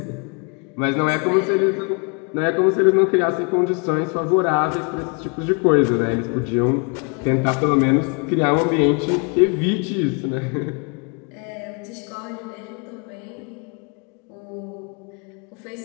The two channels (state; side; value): quieter; right; 35.2 dB